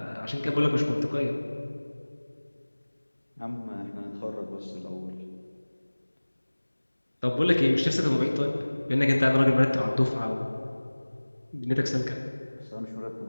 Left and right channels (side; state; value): both; inverted; correlation -1.00